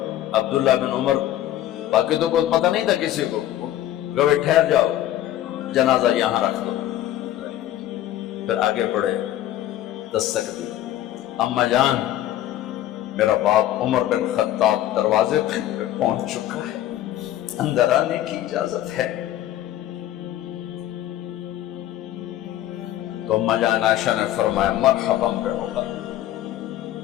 عبداللہ بن عمر، باقی تو کوئی پتہ نہیں تھا کسی کو، گوے ٹھہر جاؤ جنازہ یہاں رکھ دو، پھر آگے بڑھے، دستک دی، اماں جان میرا باپ عمر بن خطاب دروازے پہ پہنچ چکا ہے، اندر آنے کی اجازت ہے۔ تو اماں جان عائشہ نے فرمایا مرحبا بعمر،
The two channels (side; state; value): right; quieter; 13.1 dB